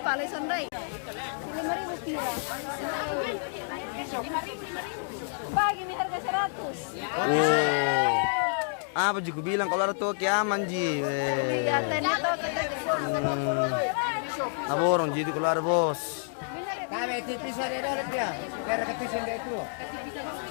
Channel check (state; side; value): silent; right; digital silence